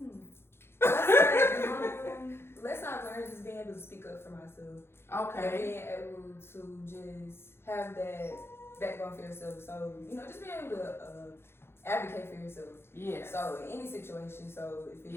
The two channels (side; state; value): right; late; 0.12 ms